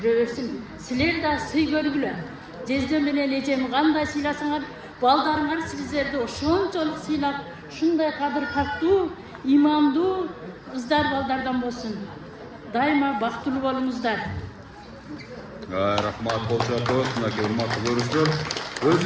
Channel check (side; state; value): both; identical; correlation 1.00